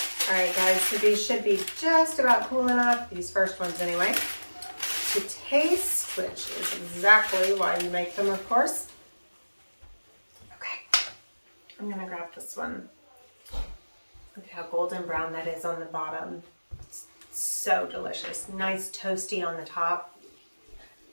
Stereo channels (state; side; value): inverted; both; correlation -1.00